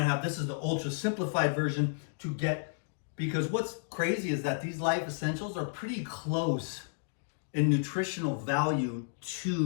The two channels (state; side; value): silent; right; digital silence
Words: have, this is the ultra simplified version to get, because what's crazy is that these life essentials are pretty close in nutritional value